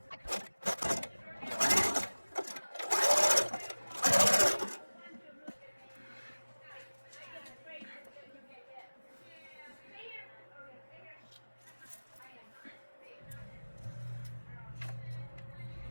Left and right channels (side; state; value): both; inverted; correlation -1.00